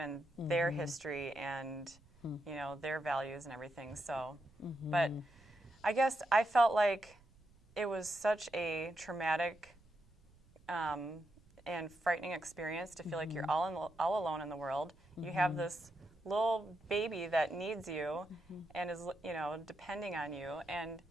their history and, you know, their values and everything. So, but I guess I felt like it was such a traumatic and frightening experience to feel like you're all alone in the world. You have this little baby that needs you and is, you know, depending on you. And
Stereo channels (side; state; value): right; noise; rumble, 27 dB below the sound